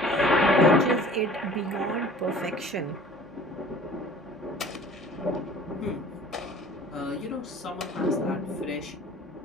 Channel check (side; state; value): both; normal; correlation 0.47